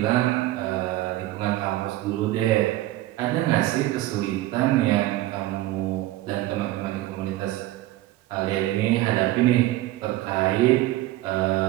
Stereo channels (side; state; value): left; quieter; 16.3 dB